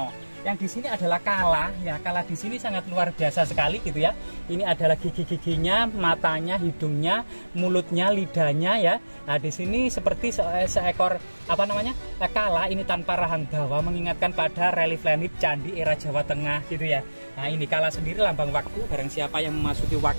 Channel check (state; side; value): inverted; both; correlation -1.00